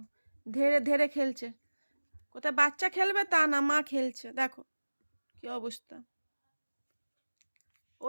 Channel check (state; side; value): inverted; both; correlation -1.00